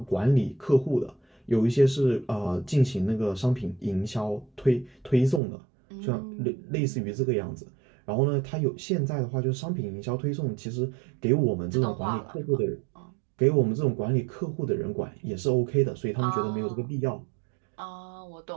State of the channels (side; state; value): left; drops out; at 5.4 s